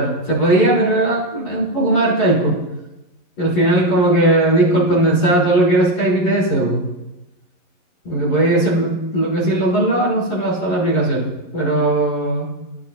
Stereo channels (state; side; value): late; right; 11 ms